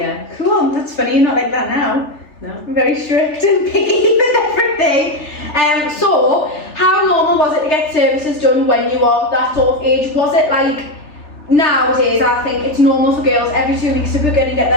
Cool, that's funny, you're not like that now. No. I'm very strict and picky with everything. So, how normal was it to get services done when you were that sort of age? Was it like, nowadays I think it's normal for girls every 2 weeks to book in and get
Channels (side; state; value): right; late; 3.4 ms